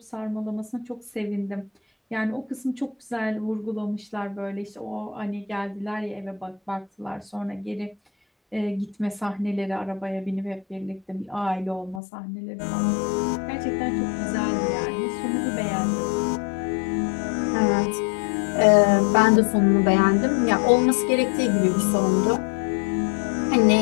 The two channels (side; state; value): right; drops out; at 12.0 s